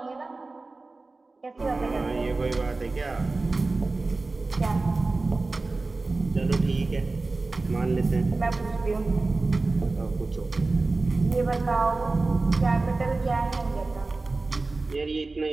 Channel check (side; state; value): left; quieter; 3.4 dB